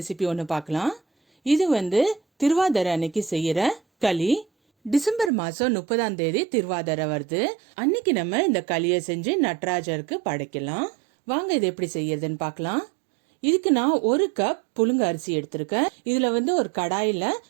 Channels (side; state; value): left; drops out; at 5.3 s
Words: ஒன்று பார்க்கலாம். இது திருவாதிரை அன்னைக்கு செய்யற களி. டிசம்பர் மாதம் 30ஆம் தேதி திருவாதிரை வருது. அன்னைக்கு நம்ம இந்த களியை செஞ்சு நடராஜருக்கு படைக்கலாம். வாங்க இது எப்படி செய்யறதுன்னு பார்க்கலாம். இதுக்கு நான் 1 கப் புழுங்க அரிசி எடுத்திருக்கேன். இதுல ஒரு கடாயில